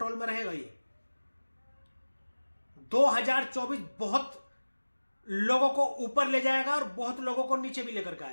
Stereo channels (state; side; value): inverted; both; correlation -1.00